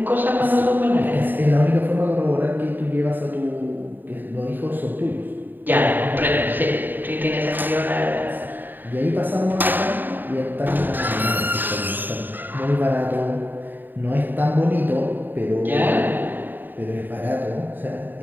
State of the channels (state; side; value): late; left; 0.091 ms